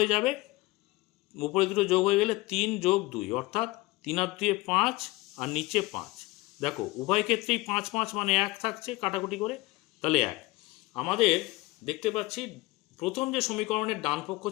যাবে। উপরে দুটো যোগ হয়ে গেলে 3 + 2, অর্থাৎ 3 আর 2 5, আর নিচে 5। দেখো উভয় ক্ষেত্রেই 5 5 মানে 1 থাকছে, কাটাকুটি করে, তাহলে 1। আমাদের দেখতে পাচ্ছি প্রথম যে সমীকরণের ডান পক্ষ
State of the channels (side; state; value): right; quieter; 21.3 dB